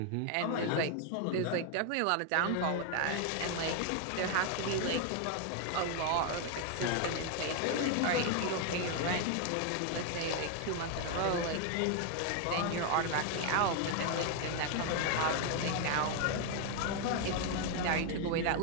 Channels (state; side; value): different; both; correlation 0.00